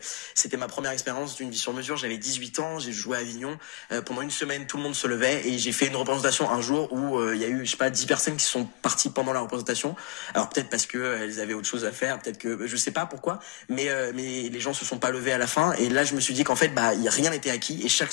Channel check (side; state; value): right; quieter; 22.1 dB